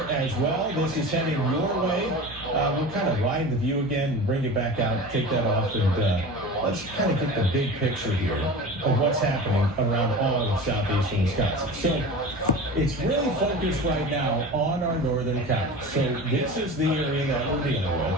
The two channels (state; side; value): noise; right; hum, 19 dB below the sound